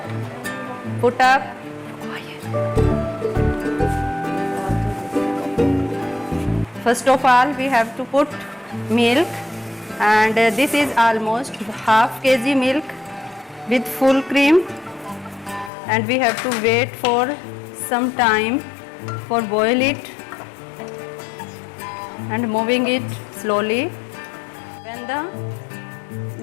put up first of all we have to put milk, and this is almost half kg milk with full cream, and we have to wait for some time for boil it and moving it slowly. When the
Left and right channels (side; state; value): right; drops out; at 15.7 s